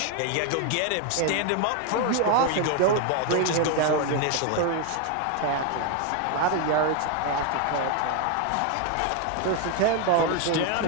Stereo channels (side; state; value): both; different; correlation 0.01